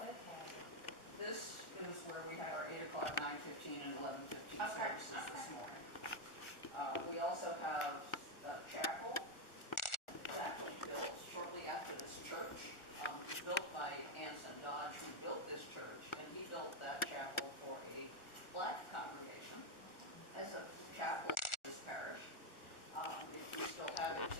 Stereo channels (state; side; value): late; right; 1.4 ms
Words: okay. This is where we had our 8 o'clock, 9:15, and 11:15 Okay. services this morning. We also have a chapel. It was actually built shortly after this church. It was built by Anson Dodge, who built this church, and he built that chapel for a black congregation as a chapel in this parish. We still have it